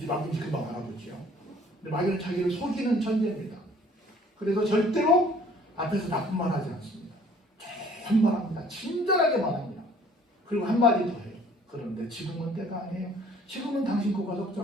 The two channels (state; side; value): normal; both; correlation 0.55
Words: 마귀인지 금방 알아보지요. 근데 마귀는 자기를 속이는 천재입니다. 그래서 절대로 앞에서 나쁜 말 하지 않습니다. 좋은 말 합니다. 친절하게 말합니다. 그리고 한마디 더 해요. 그런데 지금은 때가 아니에요. 지금은 당신 거가